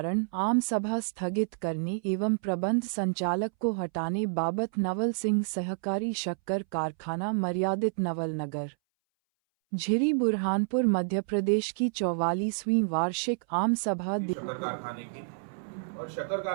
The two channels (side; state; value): left; silent; 58 dB below the other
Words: आम सभा स्थगित करने एवं प्रबंध संचालक को हटाने बाबत नवल सिंह सहकारी शक्कर कारखाना मर्यादित नवल नगर झिरी बुरहानपुर मध्य प्रदेश की 44वीं वार्षिक आम सभा और शक्कर